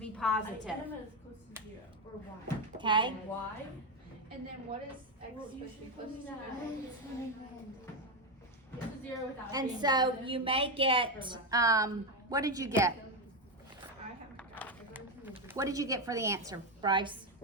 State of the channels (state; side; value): normal; both; correlation 0.09